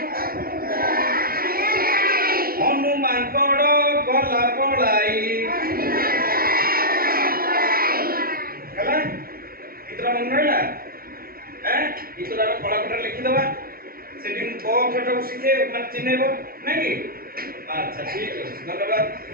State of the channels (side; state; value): left; late; 0.43 ms